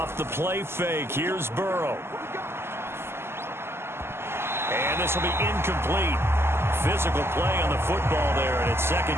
the play fake, here's Burrow. And this will be incomplete. Physical play on the football there, and it's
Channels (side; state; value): left; late; 0.12 ms